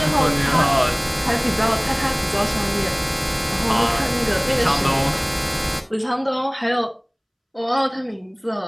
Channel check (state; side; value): identical; both; correlation 1.00